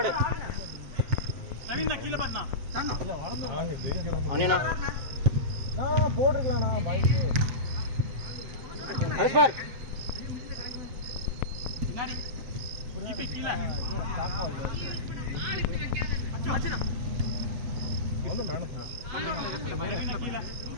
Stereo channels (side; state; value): left; late; 7.5 ms